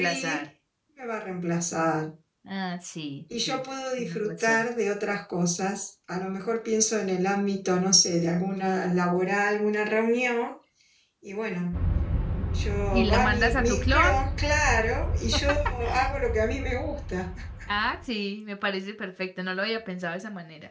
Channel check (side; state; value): both; identical; correlation 1.00